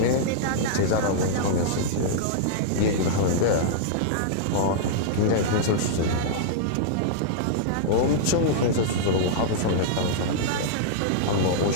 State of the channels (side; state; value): both; different; correlation -0.02